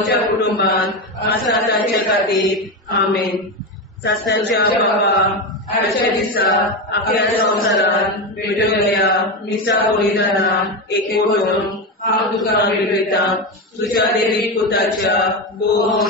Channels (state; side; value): normal; both; correlation 0.15